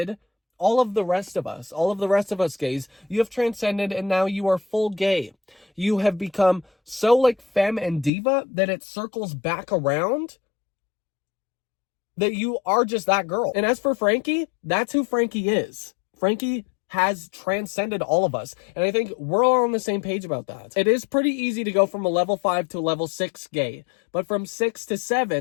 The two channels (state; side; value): drops out; right; at 8.1 s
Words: all of the rest of us. All of the rest of us gays. You have transcended, and now you are full gay. You have become so like femme and diva that it circles back around that you are just that girl. And as for Frankie, that's who Frankie is. Frankie has transcended all of us. And I think we're all on the same page about that. It is pretty easy to go from a level 5 to a level 6 gay. But from 6 to